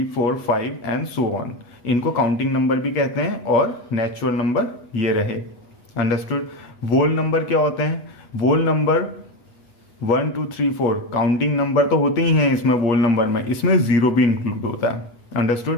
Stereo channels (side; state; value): right; late; 8.3 ms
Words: 4 5 and so on, इनको काउंटिंग नंबर भी कहते हैं और नेचुरल नंबर ये रहे। अंडरस्टूड। वोल नंबर क्या होते हैं? वोल नंबर 1 2 3 4 काउंटिंग नंबर तो होते ही हैं इसमें, वोल नंबर में इसमें जीरो भी इंक्लूड होता है।